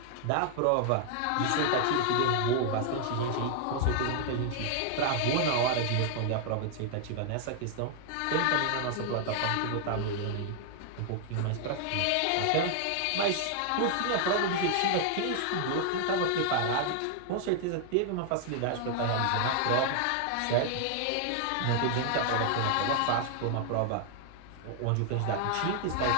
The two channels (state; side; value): different; both; correlation 0.00